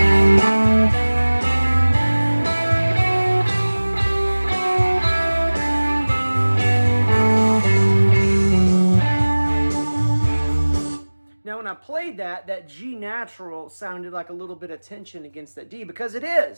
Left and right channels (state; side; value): inverted; both; correlation -1.00